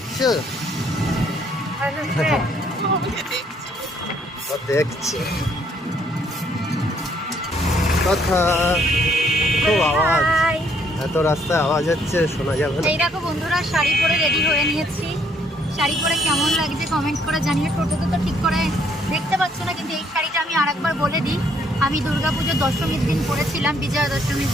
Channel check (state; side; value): normal; both; correlation 0.67